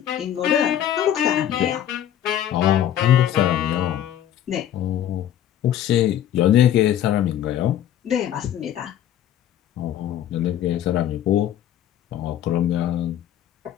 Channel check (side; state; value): right; quieter; 10.9 dB